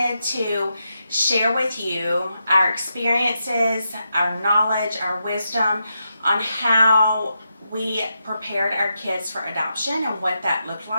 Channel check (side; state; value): both; inverted; correlation -0.85